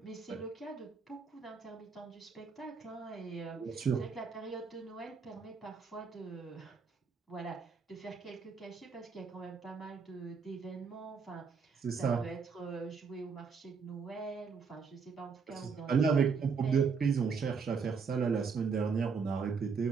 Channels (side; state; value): left; quieter; 5.5 dB